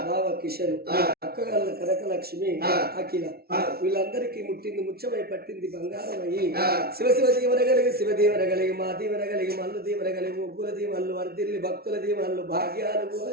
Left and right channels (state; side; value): late; left; 0.45 ms